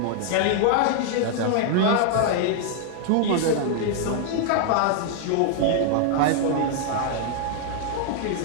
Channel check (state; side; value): different; both; correlation 0.00